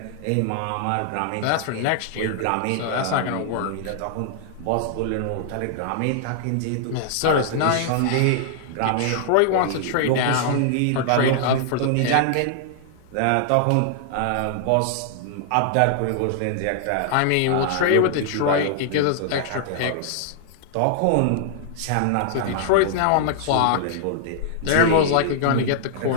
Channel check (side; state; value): both; different; correlation -0.01